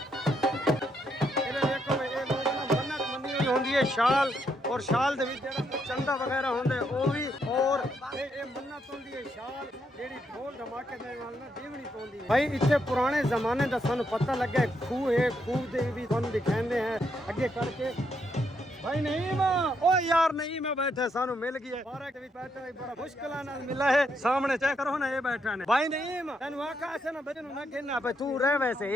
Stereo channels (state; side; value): normal; both; correlation 0.77